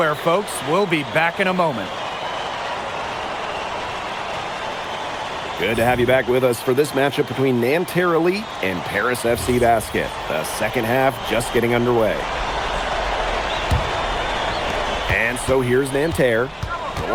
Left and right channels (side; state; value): both; identical; correlation 1.00